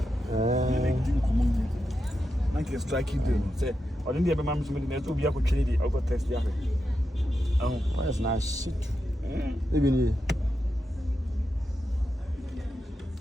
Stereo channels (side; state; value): both; normal; correlation 0.88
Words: Like a strike you do. Say, or didn't have a mam's minute to be a good lady or got test. Oh, that's nice shit. Even